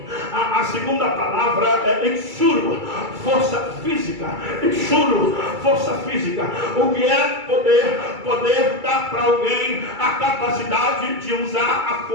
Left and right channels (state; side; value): late; left; 2.3 ms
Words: A segunda palavra é exuro, força física. Exuro, força física. O que é poder? Poder dá para alguém a capacidade de usar a